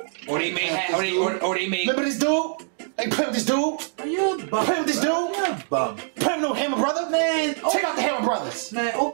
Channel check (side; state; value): left; silent; digital silence